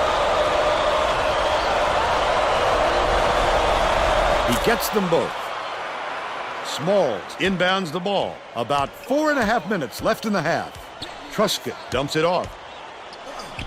He gets them both. Smalls inbounds the ball. About 4.5 minutes left in the half. Truscott dumps it off.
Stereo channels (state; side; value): identical; both; correlation 1.00